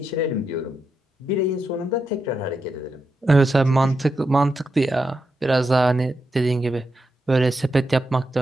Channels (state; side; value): normal; both; correlation 0.85